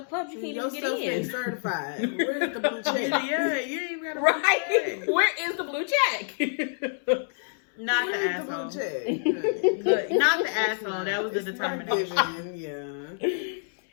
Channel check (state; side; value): silent; right; 60 dB below the other